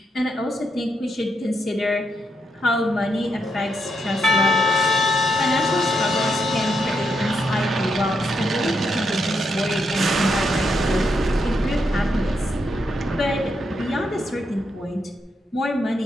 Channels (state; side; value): normal; both; correlation 0.81